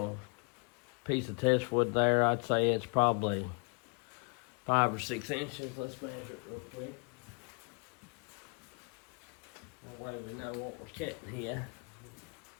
piece of test wood there. I'd say it's probably 5 or 6 inches. Let's measure it real quick. That way we know what we're cutting here.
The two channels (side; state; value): right; quieter; 37.1 dB